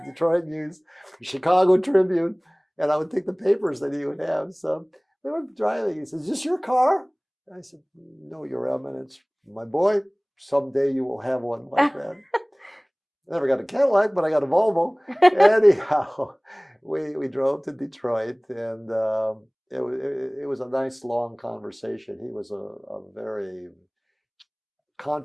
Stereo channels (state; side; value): identical; both; correlation 1.00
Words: Detroit News, the Chicago Tribune, and I would take the papers that he would have. So we were driving. He says, "Is this your car?" I said, "No, Your Eminence. My boy, someday you will have one like that." I never got a Cadillac, but I got a Volvo. Anyhow, we drove to Detroit, and it was a nice long conversation. He was a very,